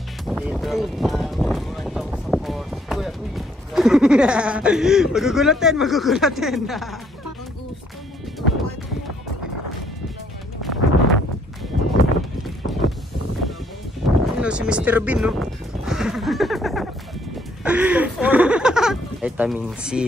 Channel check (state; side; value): normal; both; correlation 0.67